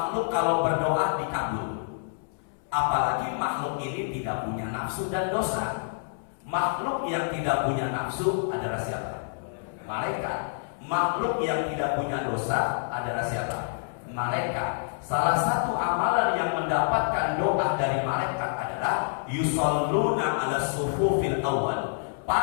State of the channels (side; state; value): right; silent; 60 dB below the other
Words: kalau berdoa dikabul? Apalagi makhluk ini tidak punya nafsu dan dosa. Makhluk yang tidak punya nafsu adalah siapa? Malaikat. Makhluk yang tidak punya dosa adalah siapa? Malaikat. Salah satu amalan yang mendapatkan doa dari malaikat adalah yusalluna ala sufufil awal.